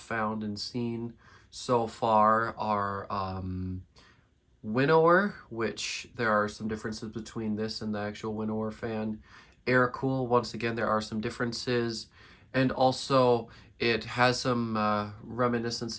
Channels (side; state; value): both; identical; correlation 1.00